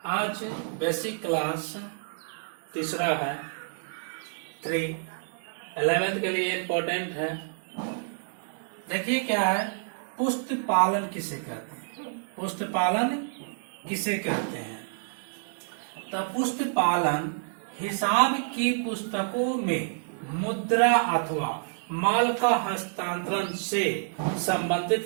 आज बेसिक क्लास तीसरा है 11th के लिए इम्पोर्टेंट है। देखिए क्या है, पुष्ट पालन किसे कहते हैं। पुष्ट पालन किसे कहते हैं? तो पुष्ट पालन हिसाब की पुस्तकों में मुद्रा अथवा माल का हस्तांतरण से संबंधित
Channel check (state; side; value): silent; left; digital silence